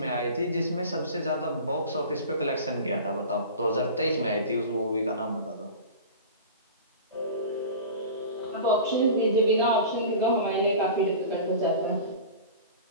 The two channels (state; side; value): inverted; both; correlation -0.35